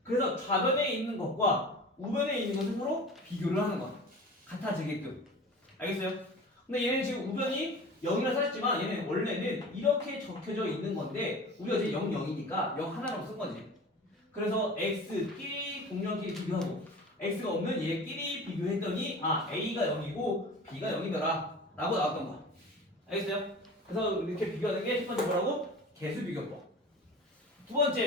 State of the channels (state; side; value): normal; both; correlation 0.37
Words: 그래서 좌변에 있는 것과 우변에 있는 것을 서로 비교를 하는 거야. 같아지게끔. 알겠어요? 근데 얘는 지금 우변이 0이라 써있지만 얘는 원래는 이렇게 적혀져 있는 건데 우리가 이제 0, 0이니까 0 하나로 쓴 거지. 그래서 x끼리 공룡끼리 비교하고 x가 없는 얘끼리 비교했더니 아 a가 0이고 b가 0이더라 라고 나왔던 거야. 알겠어요? 그래서 이렇게 비교하는 게 첫 번째 뭐라고? 개수 비교법. 두